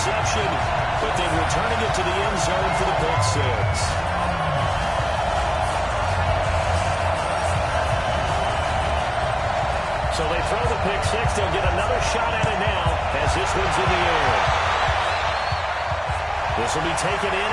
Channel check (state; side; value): identical; both; correlation 1.00